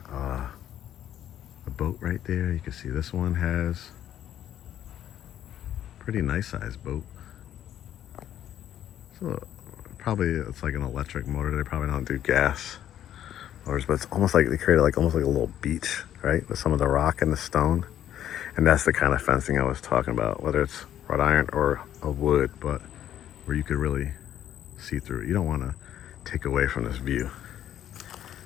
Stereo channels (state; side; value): quieter; right; 11.2 dB